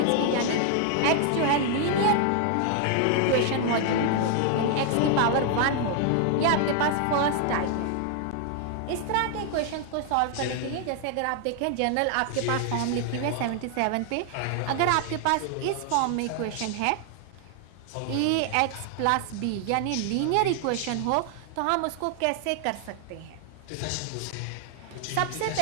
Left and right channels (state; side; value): different; both; correlation 0.00